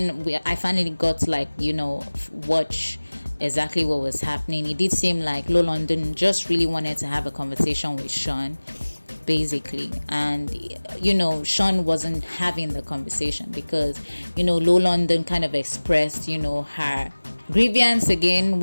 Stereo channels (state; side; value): inverted; both; correlation -1.00